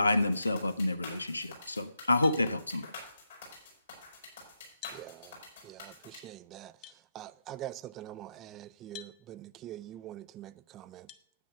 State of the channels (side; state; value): both; inverted; correlation -0.82